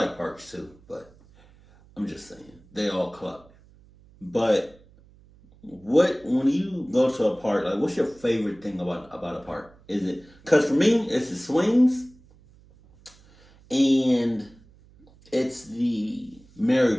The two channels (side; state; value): right; noise; hum, 27 dB below the sound